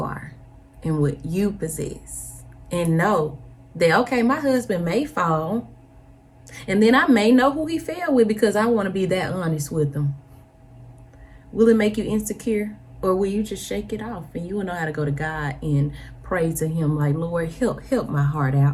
and what you possess, and know that, okay, my husband may fall, and then I may know who he fell with because I want to be that honest with him. Will it make you insecure, or will you just shake it off and you will know how to go to God and pray to him like, Lord, help my heart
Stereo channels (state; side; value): identical; both; correlation 1.00